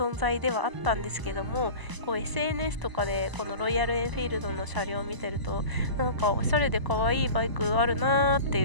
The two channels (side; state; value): left; late; 1.0 ms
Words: 在ではあったんですけども、こう SNS とかでこのロイヤルエンフィールドの車両を見てると、なんかおしゃれで可愛いバイクあるなーって